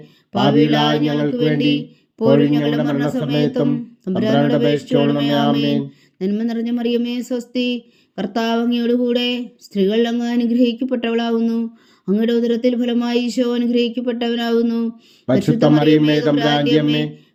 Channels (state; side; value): identical; both; correlation 1.00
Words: പാപികളായ ഞങ്ങൾക്ക് വേണ്ടി ഇപ്പോഴും ഞങ്ങളുടെ മരണസമയത്തും തമ്പുരാനോട് അപേക്ഷിച്ചുകൊള്ളണമേ. ആമേൻ. നന്മ നിറഞ്ഞ മറിയമേ സ്വസ്തി, കർത്താവ് അങ്ങയുടെ കൂടെ സ്ത്രീകൾ അങ്ങ് അനുഗ്രഹിക്കപ്പെട്ടവളാകുന്നു. അങ്ങയുടെ ഉദരത്തിൽ ഫലമായി ഈശോ അനുഗ്രഹിക്കപ്പെട്ടവനാകുന്നു. പരിശുദ്ധ മറിയമേ തമ്പുരാന്റെ അമ്മേ,